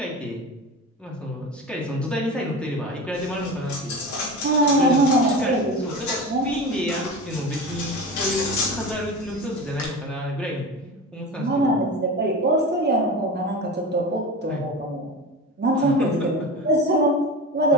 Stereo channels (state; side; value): normal; both; correlation 0.29